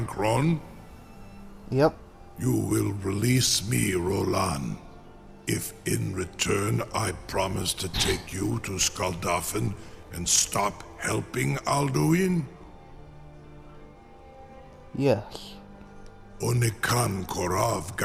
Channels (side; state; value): both; identical; correlation 1.00